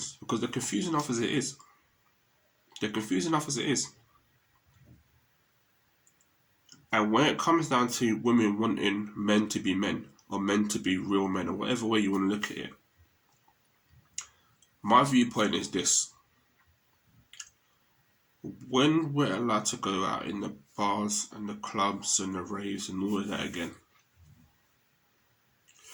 Because they're confused enough as it is. They're confused enough as it is. And when it comes down to women wanting men to be men, or men to be real men, or whatever way you want to look at it, my viewpoint is this. When we're allowed to go out in the bars and the clubs and the raves and all of that again,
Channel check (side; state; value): both; identical; correlation 1.00